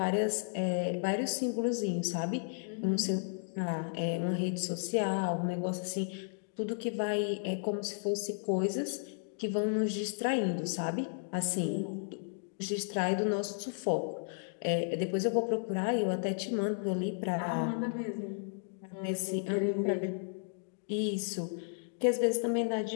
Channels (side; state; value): right; silent; digital silence